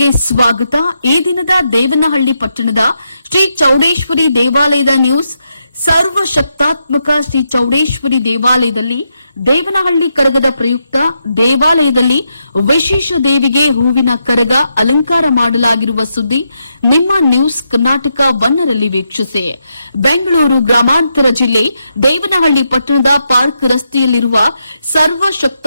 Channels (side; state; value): both; inverted; correlation -0.83